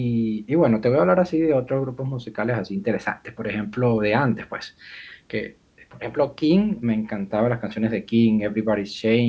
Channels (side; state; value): both; identical; correlation 1.00